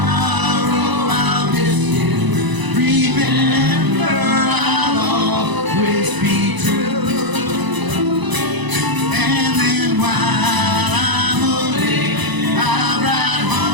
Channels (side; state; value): left; late; 1.0 ms